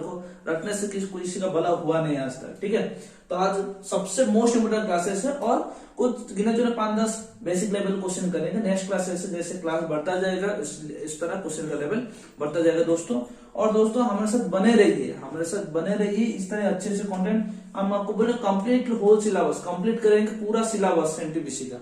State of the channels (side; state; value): both; identical; correlation 1.00